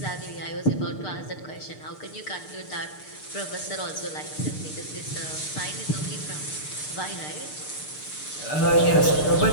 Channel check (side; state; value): right; late; 6.7 ms